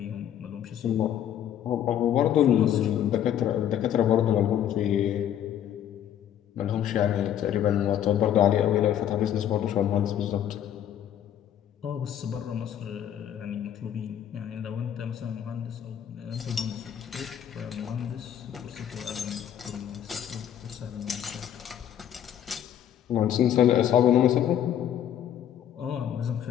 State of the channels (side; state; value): right; quieter; 10.3 dB